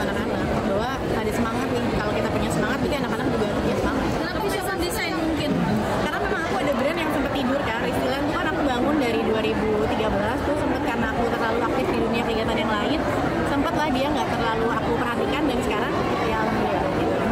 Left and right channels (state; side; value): identical; both; correlation 1.00